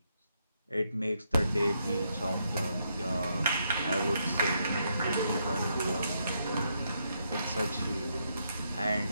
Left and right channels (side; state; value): both; inverted; correlation -0.78